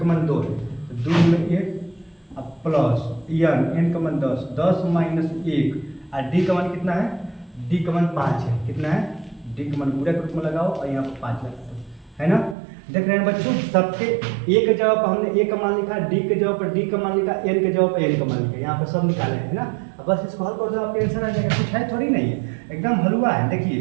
मान 2 है, तो 2 में 1 और प्लस n का मान 10 माइनस 1 और d का मान कितना है? d का मान 5 है, कितना है? d का मान पूरा के रूप में लगाओ और यहाँ पर 5 लगाओ, है ना। देख रहे हैं बच्चों, सबके ए के जगह पर हमने ए का मान लिखा, डी के जगह पर डी का मान लिखा, एन के जगह पर एन का मान लिखा, यहाँ पर सब निकाले हैं ना। अब बस इसको हल कर दो, आपका आंसर आ जाएगा। कुछ है थोड़ी नहीं है, एकदम हलवा है। देखिए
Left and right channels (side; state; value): left; drops out; at 12.6 s